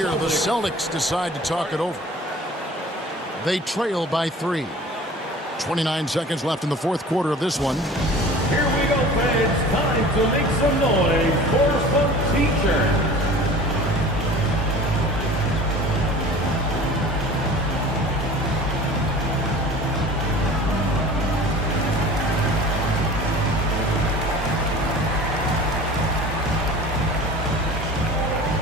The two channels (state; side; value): normal; both; correlation 0.42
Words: The Celtics decide to talk it over. They trail by 3. 29 seconds left in the fourth quarter of this one. Here we go, fans. Time to make some noise for some teachers.